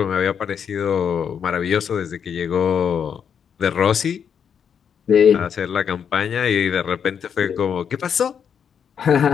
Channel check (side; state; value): right; quieter; 7.5 dB